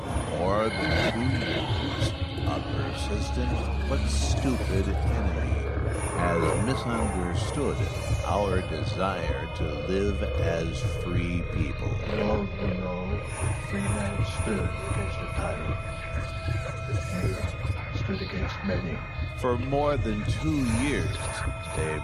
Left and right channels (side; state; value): both; identical; correlation 1.00